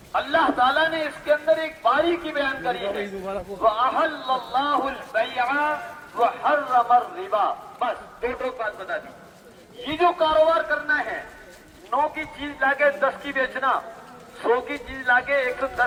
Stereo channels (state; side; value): identical; both; correlation 1.00